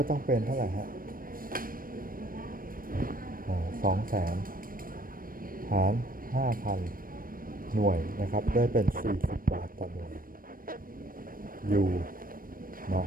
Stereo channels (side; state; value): left; late; 0.41 ms